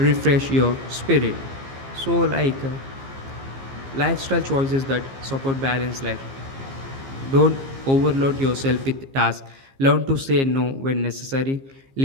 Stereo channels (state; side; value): late; left; 15 ms